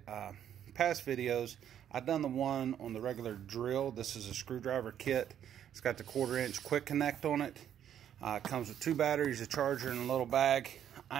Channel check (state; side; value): quieter; left; 9.9 dB